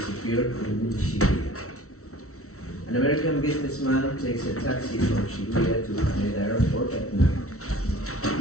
in Shibuya. An American businessman takes a taxi from Shibuya to Haneda Airport at night.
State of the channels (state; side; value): late; right; 0.64 ms